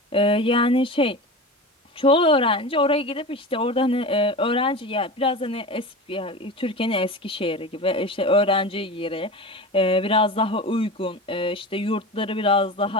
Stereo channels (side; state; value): both; normal; correlation 0.29